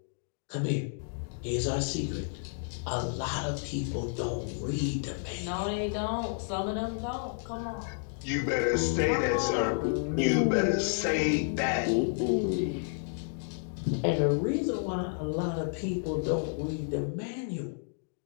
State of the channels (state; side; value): silent; right; digital silence